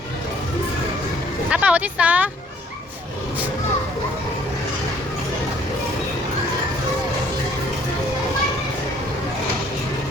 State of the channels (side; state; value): both; normal; correlation 0.61